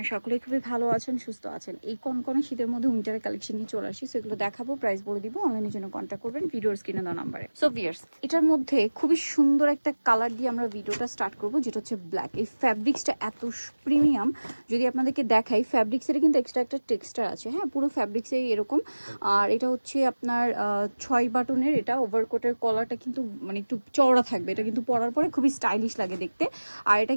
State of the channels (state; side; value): inverted; both; correlation -1.00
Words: সকলেই খুবই ভালো আছেন, সুস্থ আছেন। এই কনকনে শীতের মধ্যে উইন্টারের কালেকশন নিয়ে চলে আসি, সেগুলো দেখাবো, প্রাইস বলে দিব। অনলাইনের জন্য কন্ট্যাক্ট করবেন ভিডিওর স্ক্রিনে দেওয়া নাম্বারে। সো ভিউয়ার্স, এটার মধ্যে খুবই সুন্দর একটা কালার দিয়ে আমরা ভিডিওটা স্টার্ট করবো, যেটা হচ্ছে ব্ল্যাক। এই ফ্যাব্রিক্সটা এত প্রিমিয়াম, যদি আপনাদেরকে দেখাই, ফ্যাব্রিক্সের কিন্তু এক্সট্রা একটা টেক্সচার আছে। হ্যাঁ, পুরো ফ্যাব্রিক্সে এরকম। আর এটা হচ্ছে আপনার 6 বাটনের। এটা ওভারকোটের কলারটা কিন্তু মানে একটু চওড়া থাকবে, এটা কিন্তু পরার পরে খুবই স্টাইলিশ লাগে দেখতে। আর এটা